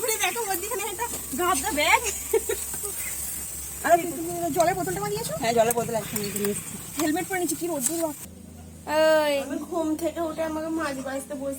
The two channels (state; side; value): identical; both; correlation 1.00